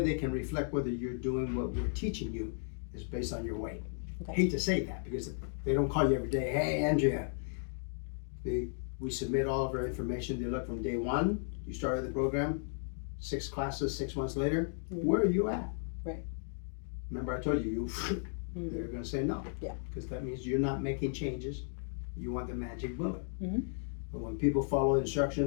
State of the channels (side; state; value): right; silent; digital silence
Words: they can reflect whether you're doing what we're teaching you is based on your weight. Okay. I hate to say that because they don't call you every day, hey Andrea. We submit all of our information. They look from day 1, you started the program, 6 classes, 6 months later, where are you at? Right. Remember I told you, they're going to say no. Yeah. Because that means you're not making changes. You want the magic bullet. Mhm. But when people follow